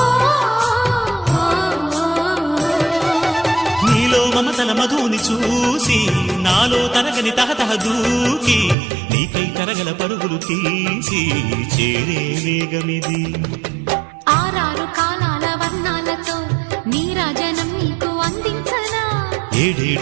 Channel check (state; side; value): drops out; left; at 8.8 s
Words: నీలో మమతల మధుని చూసి నాలో తరగని తహతహ దూకి నీకై తరగల పరుగులు తీసి చేరే వేగమిది. ఆరారు కాలాల వర్ణాలతో నీరాజనం నీకు అందించనా,